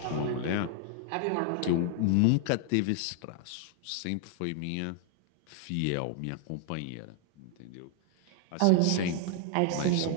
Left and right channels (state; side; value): different; both; correlation 0.00